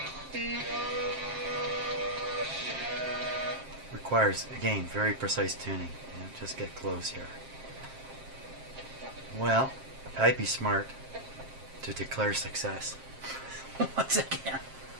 Requires, again, very precise tuning. Just get close here. Well, I'd be smart to declare success once again.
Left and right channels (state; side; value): late; left; 7.5 ms